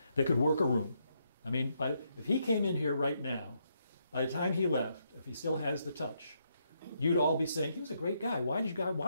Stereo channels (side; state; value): both; inverted; correlation -0.77